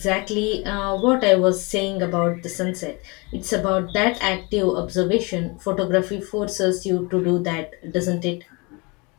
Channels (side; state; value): right; quieter; 28.5 dB